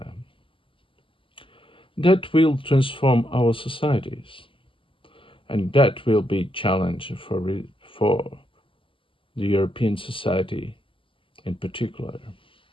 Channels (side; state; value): right; late; 0.25 ms